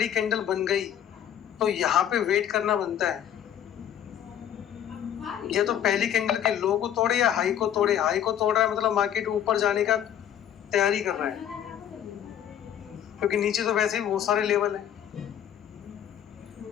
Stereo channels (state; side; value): quieter; right; 10.1 dB